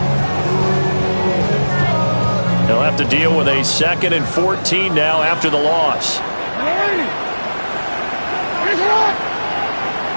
They'll have to deal with a 2nd and 14 now after the loss.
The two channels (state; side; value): inverted; both; correlation -1.00